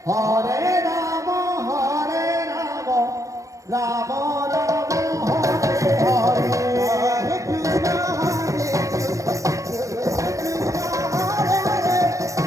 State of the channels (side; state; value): left; late; 0.16 ms